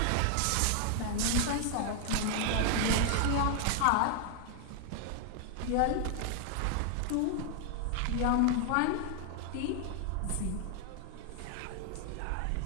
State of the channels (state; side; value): different; both; correlation 0.00